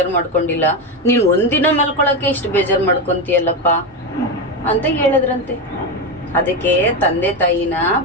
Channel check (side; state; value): both; normal; correlation 0.13